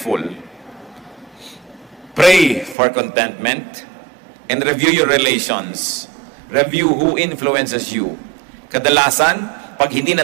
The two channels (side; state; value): left; drops out; at 2.8 s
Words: Pray for contentment and review your relations. Review who influences you. Kadalasan, pag hindi